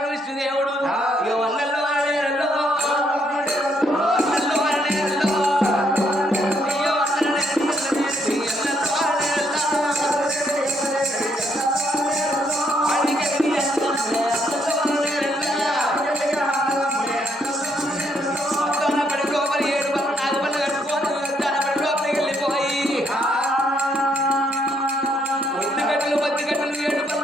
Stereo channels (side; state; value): both; normal; correlation 0.72